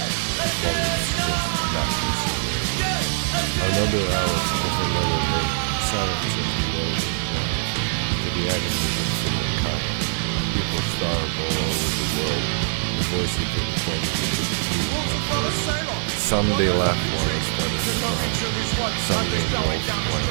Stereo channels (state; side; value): silent; left; 63 dB below the other